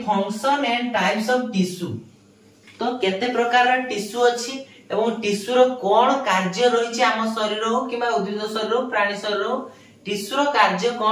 function and types of tissue. तो केते प्रकार टिश्यू अछि एवं टिश्यू रो कोन कार्य रहिछि हम शरीर हो किबा उद्भिद शरीर हो प्राणी शरीर हो टिश्यू रो कार्य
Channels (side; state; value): both; identical; correlation 1.00